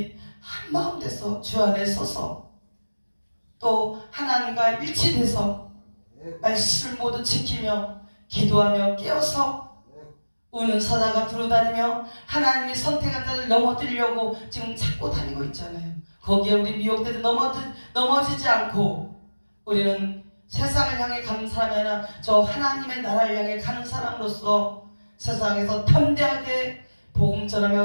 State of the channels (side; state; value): both; inverted; correlation -1.00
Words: 한마음 돼서 주 안에 서서 또 하나님과 일치돼서 말씀을 모두 지키며 기도하며 깨어서 우는 사자가 두루다니며 하나님이 선택한 자를 넘어뜨리려고 지금 찾고 다니고 있잖아요. 거기에 우리 미혹되도 넘어지지 않고 우리는 세상을 향해 가는 사람이 아니라 저 하나님의 나라를 향해 가는 사람으로서 세상에서 담대하게 복음